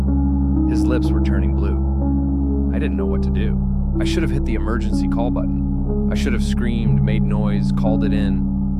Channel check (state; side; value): identical; both; correlation 1.00